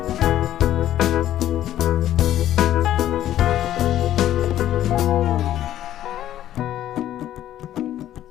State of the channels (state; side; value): quieter; right; 12.4 dB